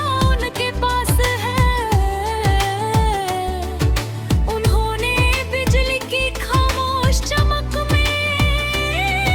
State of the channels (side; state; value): both; identical; correlation 1.00